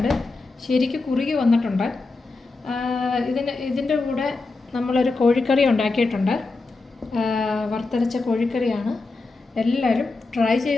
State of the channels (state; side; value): quieter; right; 3.6 dB